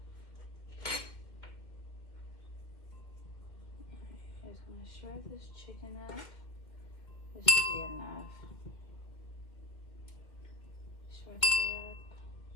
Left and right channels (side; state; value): right; late; 2.1 ms